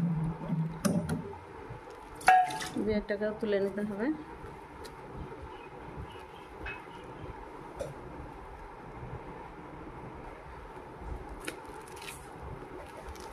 এটাকেও তুলে নিতে হবে।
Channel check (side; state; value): both; identical; correlation 1.00